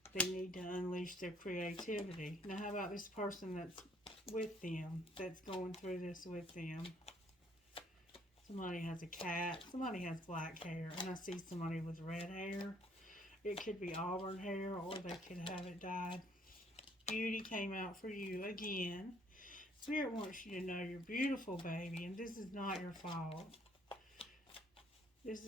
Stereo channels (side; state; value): both; normal; correlation 0.63